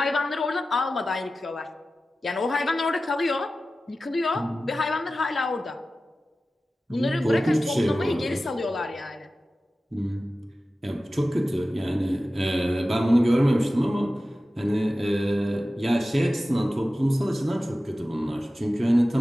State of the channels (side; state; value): both; normal; correlation 0.95